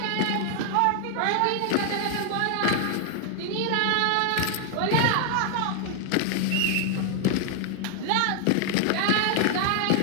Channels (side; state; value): both; different; correlation 0.00